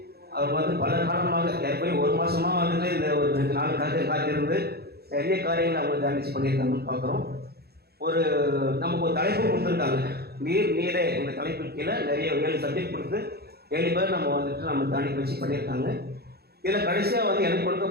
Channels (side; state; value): left; late; 0.46 ms